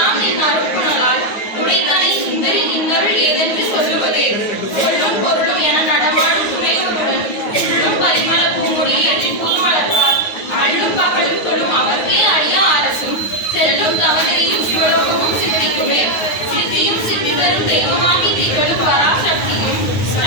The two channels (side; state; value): right; late; 9.4 ms